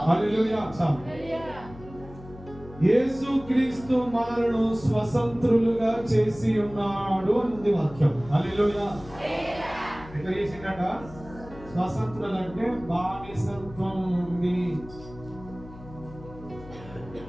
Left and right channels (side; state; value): left; noise; hum, 17 dB below the sound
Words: హల్లెలూయా. యేసు క్రీస్తు మనలను స్వతంత్రులుగా చేసి ఉన్నాడు అని వాక్యం. హల్లెలూయా. ఎట్లా చేసిండట? స్వతంత్రులు అంటే బానిసత్వం